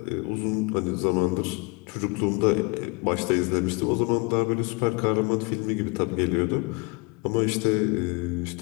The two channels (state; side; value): quieter; right; 29.5 dB